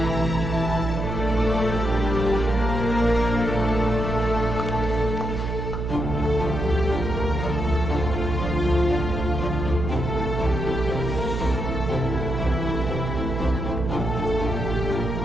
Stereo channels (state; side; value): noise; right; hum, 3 dB below the sound